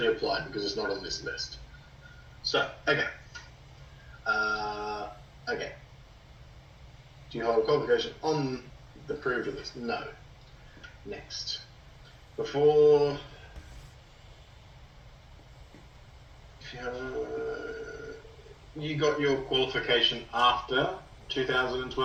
apply because it's not on this list. So okay. Okay. Do you hold a qualification on the approved list? No. Next. Before. You got your qualification after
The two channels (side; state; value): both; identical; correlation 1.00